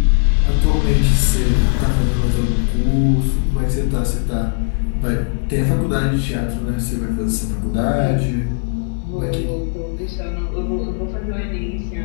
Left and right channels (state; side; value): silent; right; 59 dB below the other